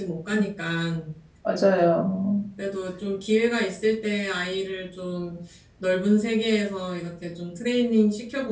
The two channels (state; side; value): identical; both; correlation 1.00